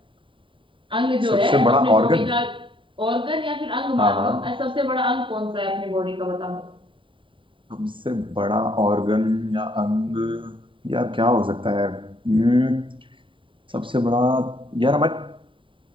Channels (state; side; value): late; left; 0.25 ms